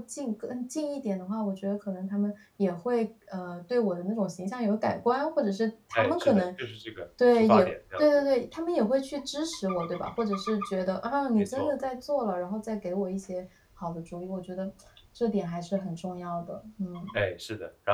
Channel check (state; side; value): identical; both; correlation 1.00